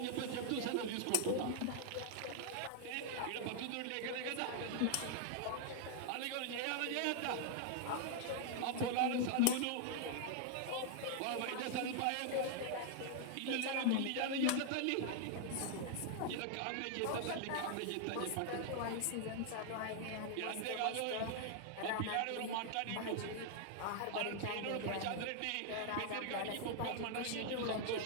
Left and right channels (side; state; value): both; different; correlation 0.00